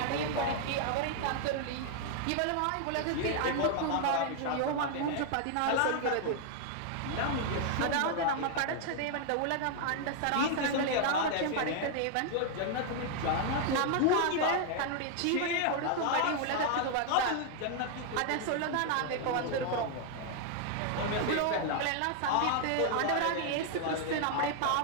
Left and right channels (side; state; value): both; different; correlation 0.00